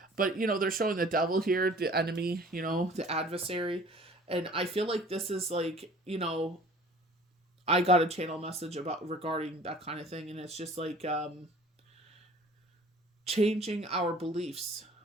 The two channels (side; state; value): both; normal; correlation 0.49